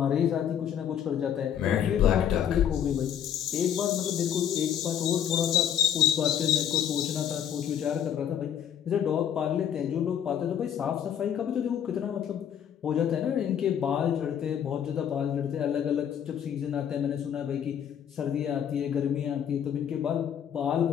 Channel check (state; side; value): quieter; right; 9.2 dB